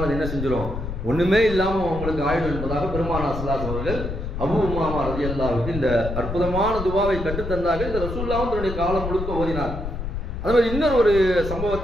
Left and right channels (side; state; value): left; noise; rumble, 6 dB below the sound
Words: அது என்ன செஞ்சிடும், ஒண்ணுமே இல்லாம உங்களுக்கு ஆயிடும் என்பதாக பெருமானார் ஸல்லல்லாஹு அலைஹி வஸல்லம் அவர்கள் அபூ உமாமா ரலியல்லாஹு அன்ஹு இந்த அற்புதமான துவாவை கற்றுத்தந்தார்கள். இந்த ரசூலுல்லாஹ் தன்னுடைய காலம் முழுக்க ஓதினார். அதே மாதிரி இன்னொரு ஒரு